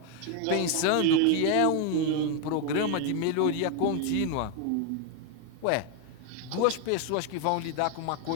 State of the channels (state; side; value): different; both; correlation 0.01